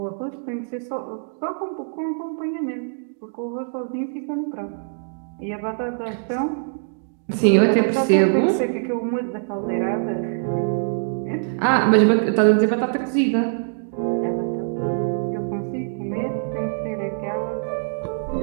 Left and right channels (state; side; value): silent; left; digital silence